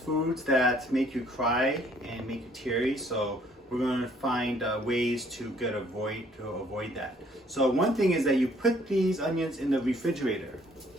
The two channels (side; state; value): both; normal; correlation 0.62